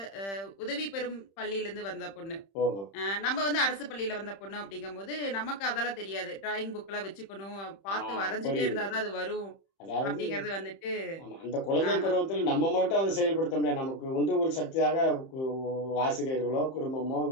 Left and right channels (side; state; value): right; late; 31 ms